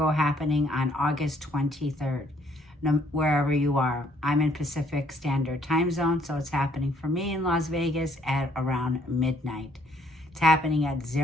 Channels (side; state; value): both; normal; correlation 0.66